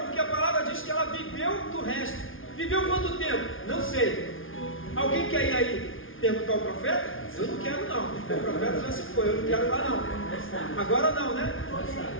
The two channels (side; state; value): right; late; 0.58 ms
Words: porque a palavra diz que ela viveu do resto. Viveu quanto tempo? Não sei. Alguém quer ir aí perguntar ao profeta? Eu não quero não, o profeta já se foi, eu não quero lá não. Agora não, né?